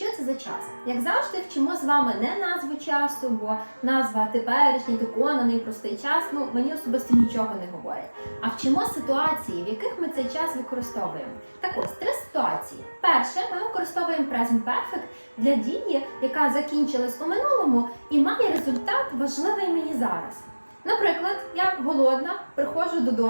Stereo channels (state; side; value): inverted; both; correlation -1.00